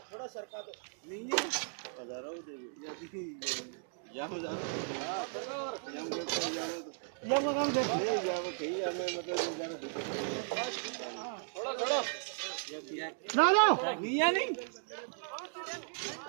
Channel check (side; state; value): left; silent; digital silence